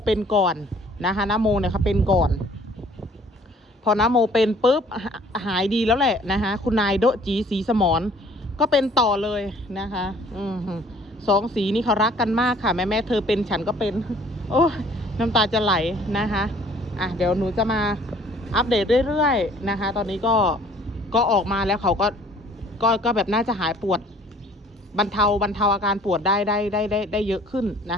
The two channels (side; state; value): both; normal; correlation 0.55